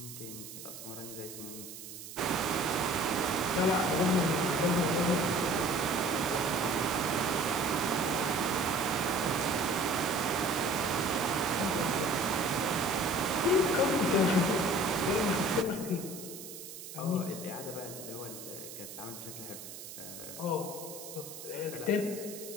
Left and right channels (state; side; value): noise; right; hiss, 12 dB below the sound